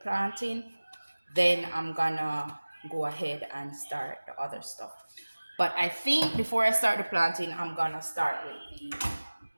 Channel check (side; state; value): both; inverted; correlation -1.00